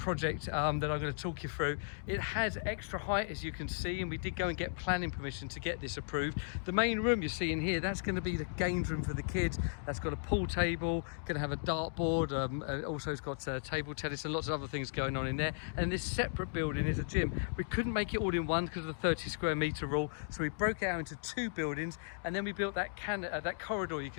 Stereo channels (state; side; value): silent; right; digital silence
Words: that I'm going to talk you through. It has extra height, as you can see, and we did go and get planning permission to get this approved. The main room you're seeing here, that's going to be the games room for the kids. That's got a pool table, going to have a dartboard, also it's got table tennis and lots of other things going on in there. And this separate building is a gym. We couldn't make it all in one because of the 30 square meter rule, so we broke it out into 2 buildings, and then we built that corridor you